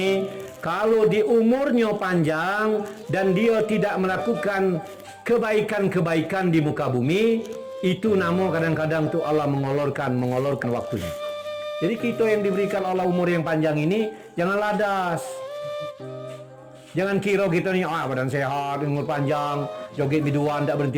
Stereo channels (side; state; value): both; identical; correlation 1.00